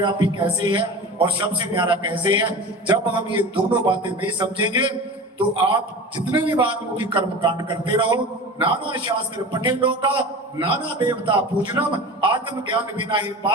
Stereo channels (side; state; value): both; normal; correlation 0.34